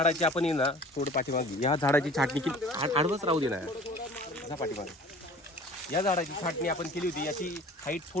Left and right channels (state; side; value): normal; both; correlation 0.45